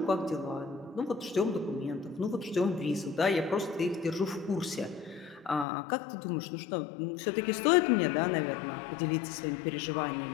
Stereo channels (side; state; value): right; drops out; at 5.7 s